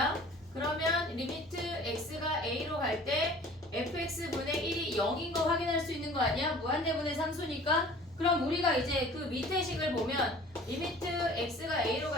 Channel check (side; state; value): both; normal; correlation 0.47